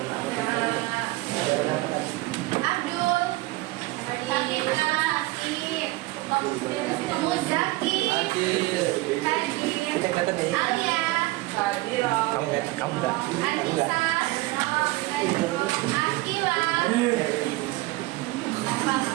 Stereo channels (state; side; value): quieter; left; 20.1 dB